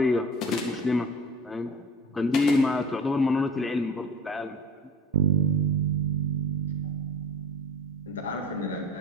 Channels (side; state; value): both; normal; correlation 0.41